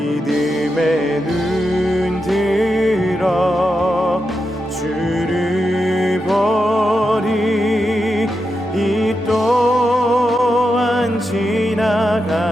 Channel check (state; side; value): normal; both; correlation 0.87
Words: 믿음의 눈 들어 주를 보리. 이 또한